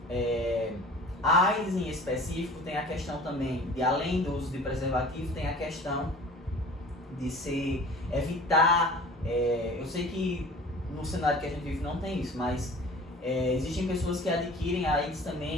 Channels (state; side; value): normal; both; correlation 0.44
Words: A AIDS em específico tem a questão também de, além do uso de preservativo, tem a questão de se evitar, eu sei que no cenário que a gente vive não tem isso, mas existem pessoas que adquirem a AIDS